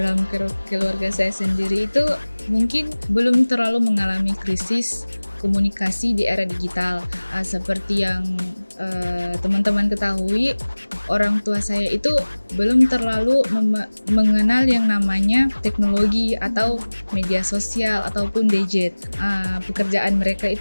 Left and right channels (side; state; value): both; inverted; correlation -1.00